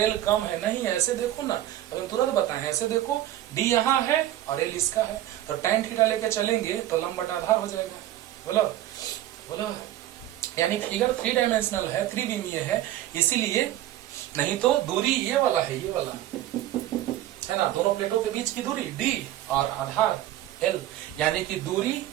l कम है, नहीं, ऐसे देखो ना, अगर तुरंत बताएं, ऐसे देखो d यहाँ है और l इसका है, तो tan थीटा लेके चलेंगे तो लंब बटा आधार हो जाएगा। बोलो बोलो, यानी फिगर 3 डायमेंशनल है, त्रिविमीय है, इसीलिए, नहीं तो दूरी ये वाला है, ये वाला है ना, दोनों प्लेटों के बीच की दूरी d और आधार l, यानी कि दूरी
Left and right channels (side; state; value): left; quieter; 13.5 dB